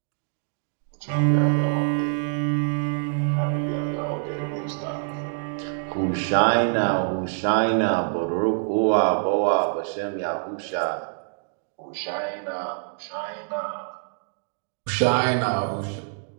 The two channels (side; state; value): left; silent; digital silence